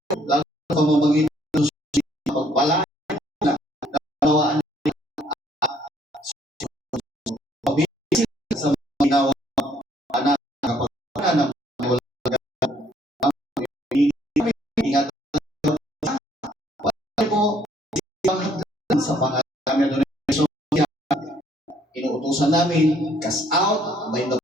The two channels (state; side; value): normal; both; correlation 0.65